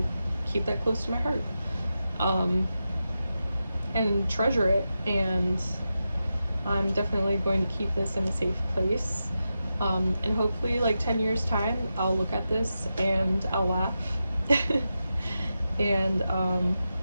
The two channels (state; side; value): inverted; both; correlation -0.90